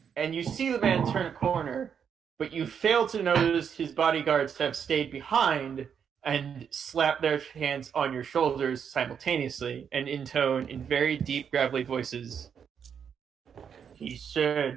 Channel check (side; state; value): left; quieter; 7.5 dB